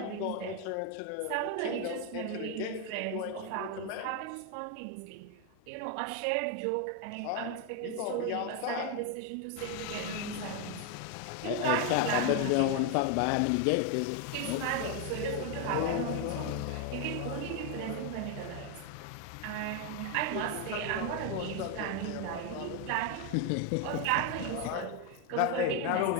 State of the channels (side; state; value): both; different; correlation 0.01